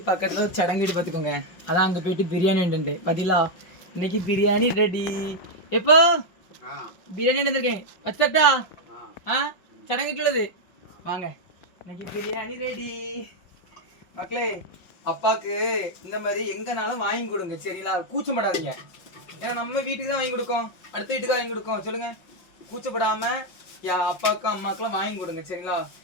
பக்கத்தில் ஒரு சடங்கு வீடு பார்த்துக்கோங்க. அதான் அங்கே போயிட்டு பிரியாணி உண்டு பதிலா. இன்னைக்கு பிரியாணி ரெடி. எப்போ பிரியாணி வந்துருக்கேன் வச்சட்டா? சடங்கு வீட்டுள்ளது வாங்க. இன்னைக்கு பிரியாணி ரெடி மக்களே. அப்பாவுக்கு இந்த மாதிரி எங்கனாலும் வாங்கி கொடுங்க சரிங்களா, கூச்சப்படாதீங்க. ஏன்னா நம்ம வீட்டுக்கு தான் வாங்கி கொடுக்கோம், அடுத்த வீட்டுக்கு வாங்கி கொடுக்கோம். சொல்லுங்க, கூச்சப்படாமல் அப்பாவுக்கும் அம்மாக்கெல்லாம் வாங்கி கொடுங்க சரிங்களா.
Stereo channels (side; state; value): right; late; 5.6 ms